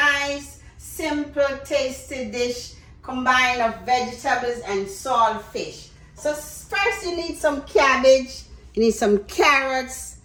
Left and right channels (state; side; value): identical; both; correlation 1.00